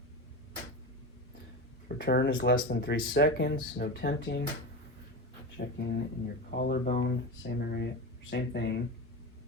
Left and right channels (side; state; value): both; normal; correlation 0.22